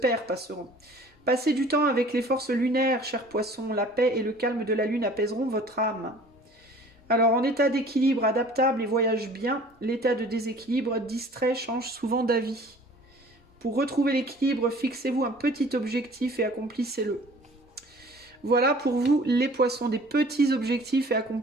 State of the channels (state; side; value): normal; both; correlation 0.49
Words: passeront. Passer du temps avec les forces lunaires, cher poisson, la paix et le calme de la lune apaiseront votre âme. Alors, en état d'équilibre adaptable et voyage bien, l'état de déséquilibre distrait change souvent d'avis. Pour retrouver l'équilibre, fixez-vous un petit objectif et accomplissez-le. Voilà pour vous les poissons, des petits objectifs et